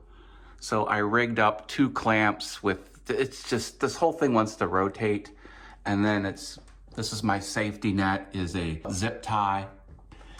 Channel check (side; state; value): both; identical; correlation 1.00